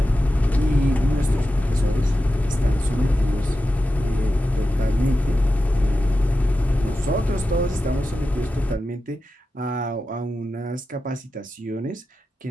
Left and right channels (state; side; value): normal; both; correlation 0.91